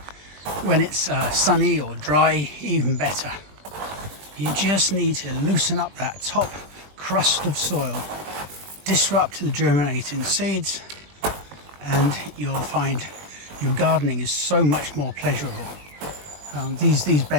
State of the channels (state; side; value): late; left; 20 ms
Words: when it's sunny or dry, even better. You just need to loosen up that top crust of soil, disrupt the germinating seeds, and you'll find your gardening is so much more pleasurable. These